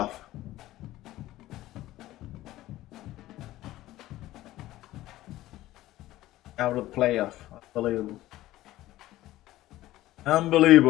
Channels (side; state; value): right; quieter; 15.8 dB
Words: Out of the playoff. Unbelievable.